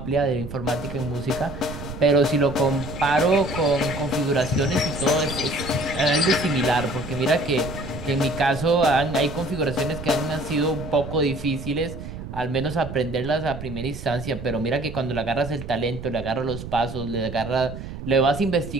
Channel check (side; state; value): right; noise; rumble, 10 dB below the sound